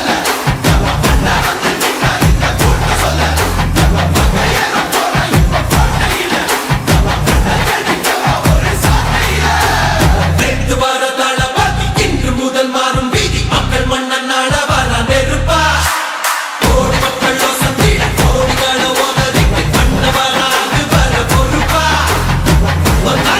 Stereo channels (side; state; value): both; identical; correlation 1.00